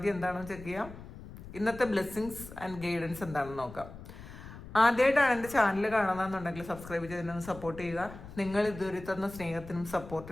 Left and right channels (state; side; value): noise; left; rumble, 15 dB below the sound